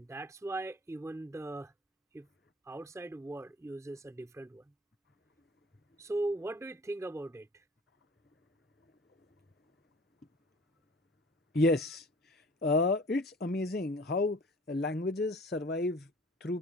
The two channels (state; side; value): normal; both; correlation 0.46